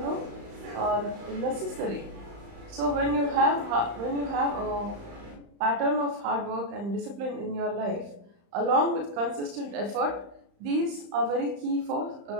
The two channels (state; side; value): late; left; 35 ms